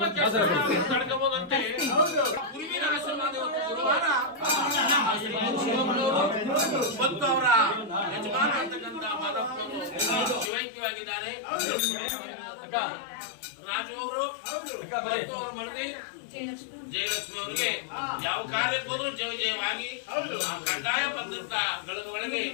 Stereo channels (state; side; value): drops out; right; at 10.5 s